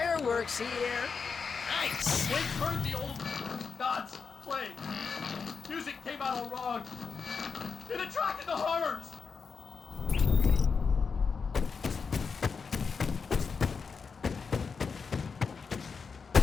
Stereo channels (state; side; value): quieter; right; 5.4 dB